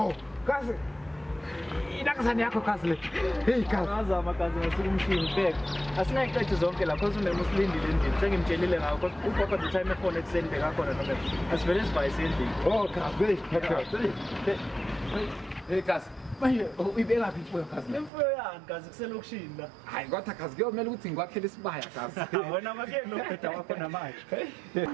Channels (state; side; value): drops out; left; at 18.1 s